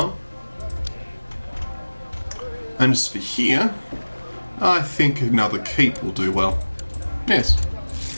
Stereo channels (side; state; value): both; inverted; correlation -1.00